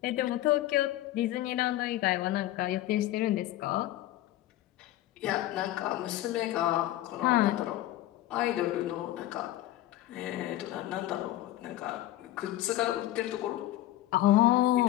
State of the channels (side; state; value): right; quieter; 14.7 dB